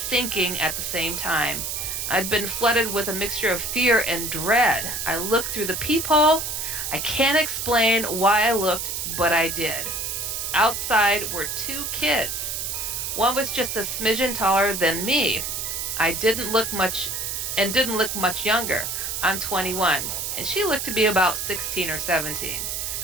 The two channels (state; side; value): noise; right; hiss, 3 dB below the sound